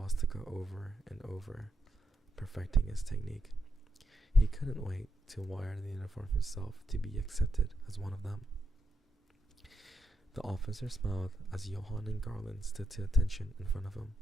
over and over, perfecting his technique. He couldn't wait to wear the uniform himself to be accepted as one of them. The officer smiled as Johann and Garland stood to attention in front of him,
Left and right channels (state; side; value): normal; both; correlation 0.82